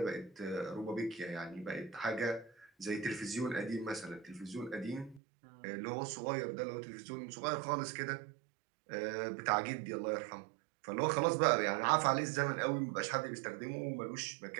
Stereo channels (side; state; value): left; drops out; at 5.2 s